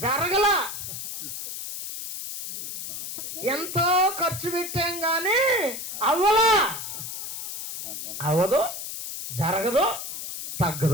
జరగల. ఎంతో ఖర్చు పెట్టాం కానీ అవ్వలా. అవ్వదు, జరగదు,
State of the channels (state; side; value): noise; left; hiss, 7 dB below the sound